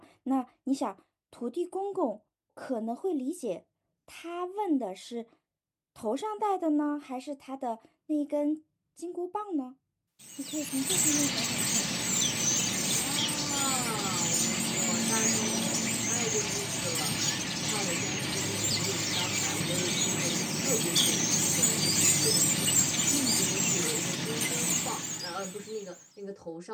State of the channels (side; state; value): both; identical; correlation 1.00